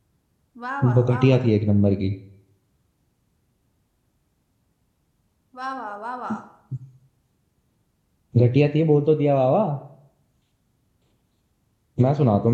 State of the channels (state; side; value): identical; both; correlation 1.00